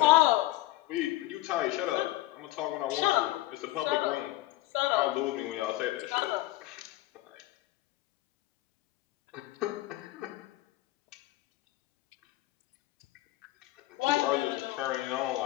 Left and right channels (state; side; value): quieter; right; 17.5 dB